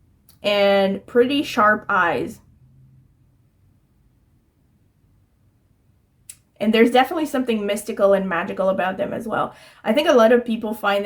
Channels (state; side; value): identical; both; correlation 1.00